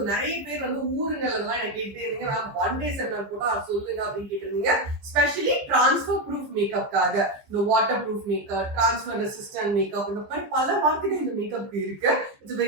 நிறைய பேர் வந்து ஊருங்களெல்லாம் என்ன கேட்டே இருந்தீங்க, மேம் ஒன் டே செமினார் போட்டா சொல்லுங்க அப்படின்னு கேட்டிருந்தீங்க. ஸ்பெஷலி டிரான்ஸ்ஃபர் ப்ரூஃப் மேக்கப்காக இந்த water proof makeup, transfer resistant makeup, இந்த மாதிரி பல வார்த்தைகள் இந்த மேக்கப் இருக்கு. It's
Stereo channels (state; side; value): late; left; 15 ms